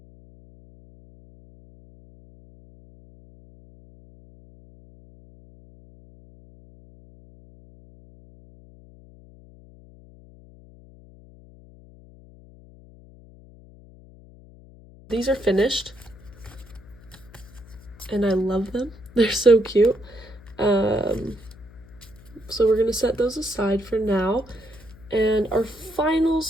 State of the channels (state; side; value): noise; left; hum, 22 dB below the sound